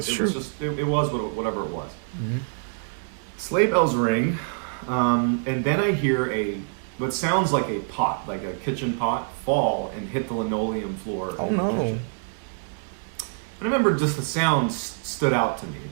was whatever it was. Mm-hmm. Sleigh bells ring, and then I hear what sounds like a pot, like a kitchen pot, fall and hit the linoleum floor. Oh no. And I remember just the sound stood out to me. It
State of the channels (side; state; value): left; silent; digital silence